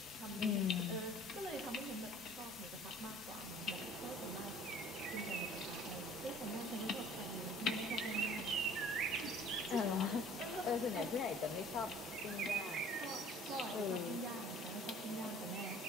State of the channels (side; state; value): both; normal; correlation 0.51